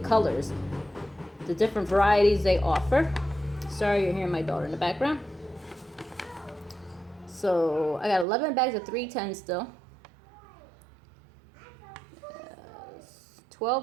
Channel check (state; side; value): drops out; left; at 8.2 s